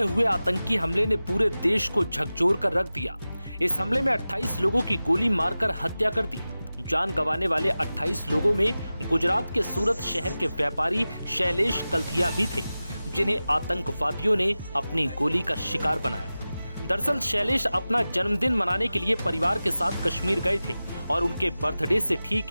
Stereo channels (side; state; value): both; inverted; correlation -0.96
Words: हुए आतंकी हमले ने पूरे देश को झकझोर कर रख दिया। इस हमले में 28 लोगों की गोली मारकर हत्या कर दी। जान गंवाने वाले 28 लोगों में गुजरात के सूरत शहर के व्यापारी शैलेश कल्थिया भी थे, जिन्हें आतंकवादियों ने अपनी गोली का शिकार बनाया। दरअसल शैलेश अपना जन्मदिन मनाने के लिए परिवार के साथ कश्मीर गए थे और उनके बर्थडे से